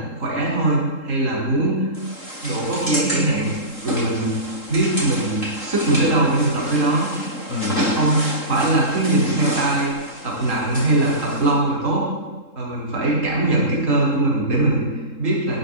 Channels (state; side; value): late; right; 3.8 ms